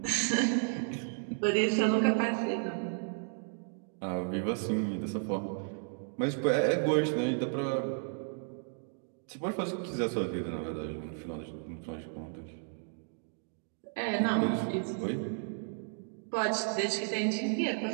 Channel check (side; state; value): left; silent; 56 dB below the other